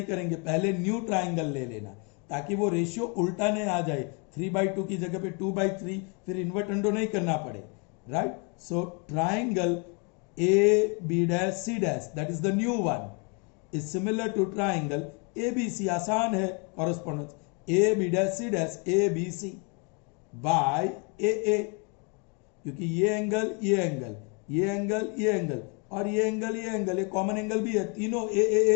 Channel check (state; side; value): quieter; right; 34.4 dB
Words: करेंगे, पहले new triangle ले लेना ताकि वो ratio उल्टा नहीं आ जाए, 3/2 की जगह पे 2/3, फिर इन्वर्टेंडो नहीं करना पड़े. Right, so triangle AB dash C dash, that is the new one, is similar to triangle ABC. आसान है correspondence, AB dash C dash ABC by AA, क्योंकि ये एंगल और ये एंगल ये कॉमन एंगल भी है, तीनों